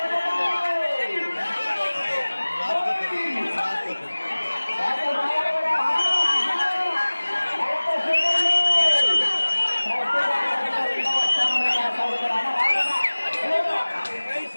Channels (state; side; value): inverted; both; correlation -1.00